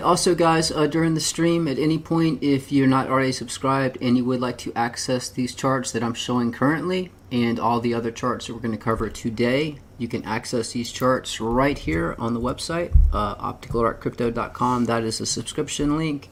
also, guys, during the stream, at any point, if you're not already subscribed and you would like to access these charts that I'm showing currently and all the other charts that we're going to cover today, you can access these charts right here on the website, opticalartcrypto.com. That is a subscription link.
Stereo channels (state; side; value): identical; both; correlation 1.00